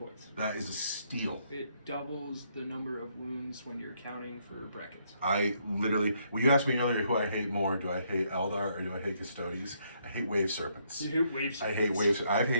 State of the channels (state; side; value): inverted; both; correlation -0.72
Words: That is a steal. It doubles the number of wounds when you're counting for brackets. I literally, well, you asked me earlier who I hate more. Do I hate Eldar or do I hate Custodes? I hate Wave Serpents. You hate Wave Serpents? I hate Wave Serpents. I've